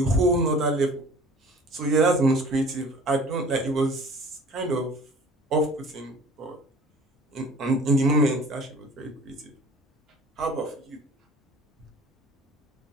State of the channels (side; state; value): both; normal; correlation 0.46